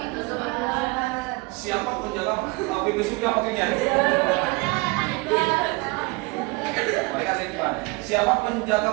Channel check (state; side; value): quieter; left; 26.5 dB